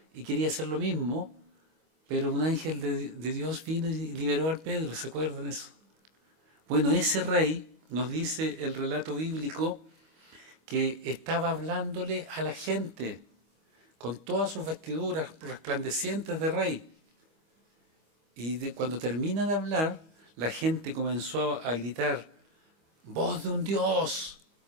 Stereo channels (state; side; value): late; left; 25 ms